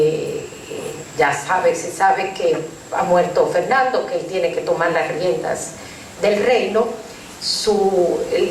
sabe que ha muerto Fernando, que él tiene que tomar las riendas del reino,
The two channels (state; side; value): identical; both; correlation 1.00